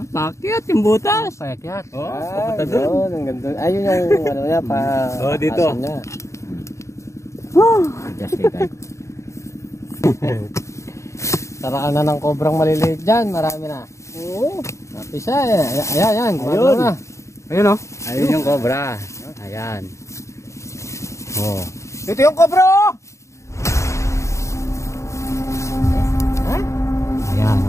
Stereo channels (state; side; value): late; right; 0.14 ms